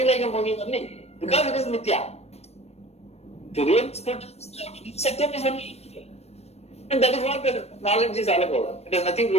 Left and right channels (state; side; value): late; right; 0.31 ms